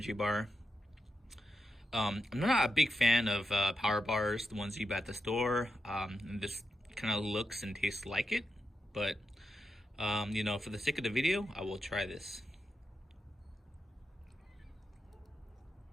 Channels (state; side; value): normal; both; correlation 0.87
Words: bar. I'm not a big fan of power bars, the ones you buy at the store. And this kind of looks and tastes like it, but you know, for the sake of the video, I will try this.